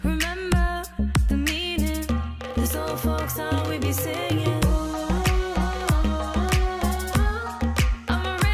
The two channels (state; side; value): identical; both; correlation 1.00